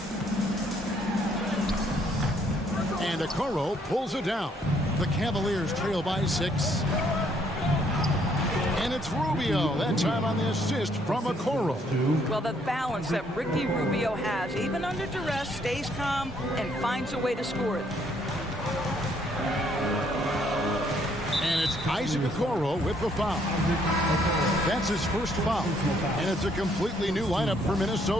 And Okoro pulls it down. The Cavaliers trail by 6. And it's Rubio, that time on the assist from Okoro. Well, the balance that Ricky Rubio has, even under duress, stays calm and finds a way to score it. And it's Isaac Okoro with the foul. That's his first foul. And it's a completely new lineup for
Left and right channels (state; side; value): normal; both; correlation 0.68